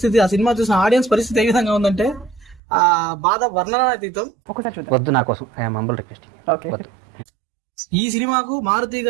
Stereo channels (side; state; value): left; drops out; at 2.6 s